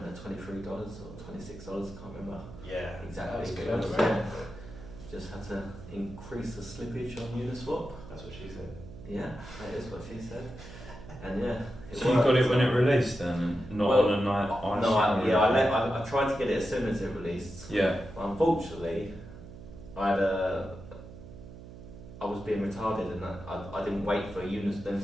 at $23 or $26. I can't remember. Yeah, exactly. That was good. Just had to increase the slippage on Uniswap. That's what she said. Yeah, that is what she said. And yeah, so you got it when it released then, and not on a night? I tried to get it as soon as it released. Yeah. But unfortunately, I was being retarded and I didn't wait for them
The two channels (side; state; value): right; noise; hum, 15 dB below the sound